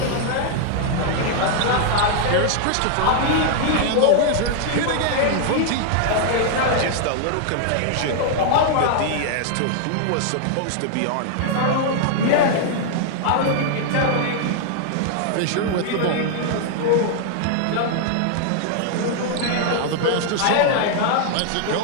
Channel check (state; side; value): different; both; correlation 0.00